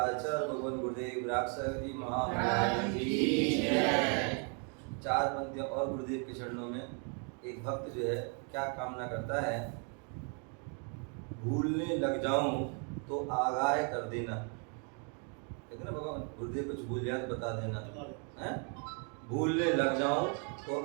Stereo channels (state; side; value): quieter; left; 39.7 dB